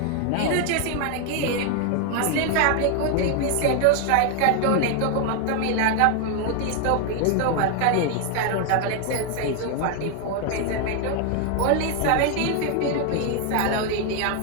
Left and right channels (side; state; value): both; different; correlation 0.00